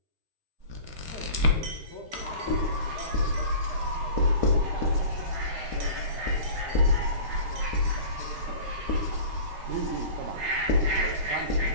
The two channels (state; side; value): late; left; 13 ms